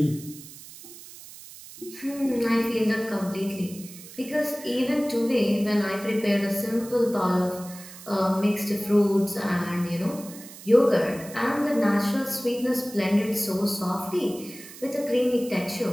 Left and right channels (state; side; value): noise; right; hiss, 16 dB below the sound